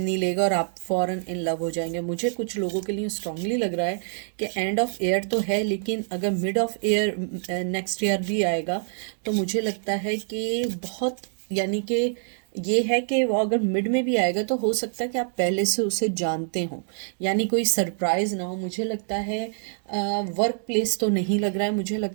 लेगा और आप फॉरन इन लव हो जाएंगे। मुझे कुछ लोगों के लिए स्ट्रांगली लग रहा है कि एंड ऑफ ईयर तो है, लेकिन अगर mid of year next year भी आएगा तो मुझे लगता है कि बहुत, यानी कि ये है कि वो अगर मिड में भी आएगा तो हो सकता है कि आप पहले से उसे जानते हो, यानी कोई सरप्राइज ना हो। मुझे लगता है वर्क प्लेस तो नहीं लग रहा है, मुझे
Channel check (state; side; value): silent; left; 60 dB below the other